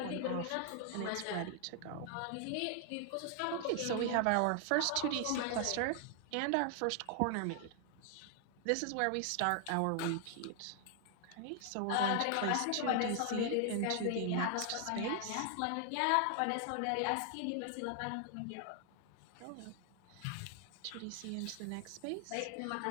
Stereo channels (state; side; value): different; both; correlation 0.00